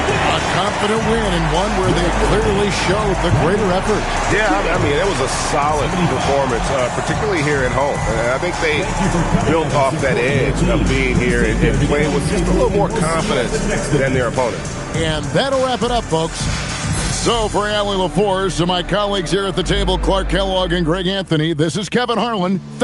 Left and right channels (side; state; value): both; identical; correlation 1.00